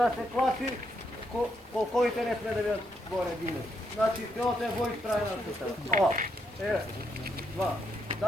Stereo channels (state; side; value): normal; both; correlation 0.77